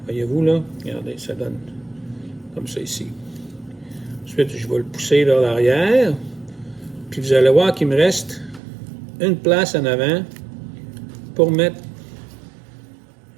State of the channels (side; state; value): left; drops out; at 8.6 s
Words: Voyez-vous là? Regardez, ça donne comme ça ici. Ensuite, je vais le pousser vers l'arrière. Puis vous allez voir qu'il me reste une place en avant pour mettre